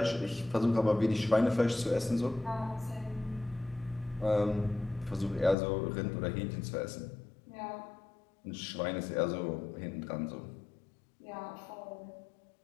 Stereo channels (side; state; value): right; drops out; at 5.6 s